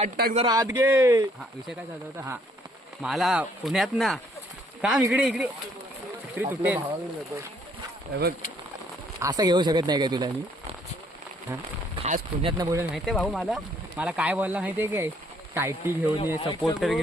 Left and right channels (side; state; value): both; normal; correlation 0.65